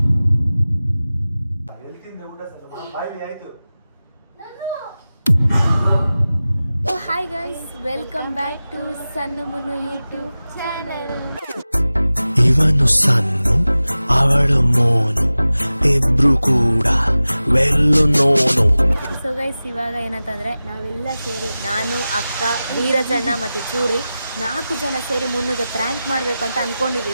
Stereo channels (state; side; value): inverted; both; correlation -0.96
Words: Hi guys, welcome back to Sannu Munnu YouTube channel. ಇವನು ಸನ್ನು, ಅವಳು ಮೋನು, ಇಬ್ರು ಕೂಡ ವೆಲ್ಲು ನೋನು. ಸೊ ಗೈಸ್, ಇವಾಗ ಏನಂತಂದ್ರೆ ನಾವೆಲ್ಲ ಸೇರಿ, ನಾನು, ಅಕ್ಕ, ವೀರಜಣ್ಣ ಮತ್ತೆ ಚೂರಿ 4 ಜನ ಸೇರಿ ಮುನ್ನುಗೆ ಪ್ರ್ಯಾಂಕ್ ಮಾಡಬೇಕು ಅಂತ